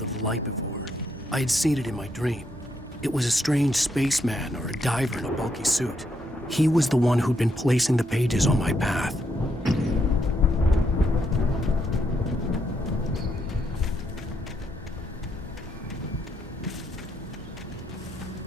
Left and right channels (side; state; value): both; normal; correlation 0.77